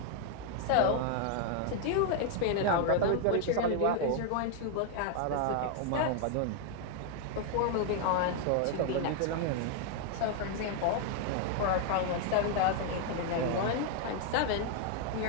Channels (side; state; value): both; different; correlation 0.00